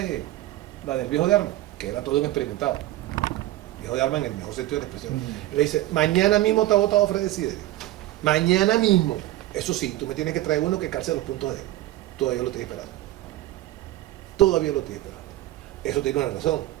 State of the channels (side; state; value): left; quieter; 15.7 dB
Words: viejo de Armas, que era todo un experimentado. Viejo de Armas en el mejor sentido de la expresión. Le dice, mañana mismo te ha votado Fred Desiderio. Mañana mismo. Eso sí, tú me tienes que traer uno que calce los puntos de él. Todavía lo estoy esperando. Todavía lo estoy esperando. Eso tiene una razón.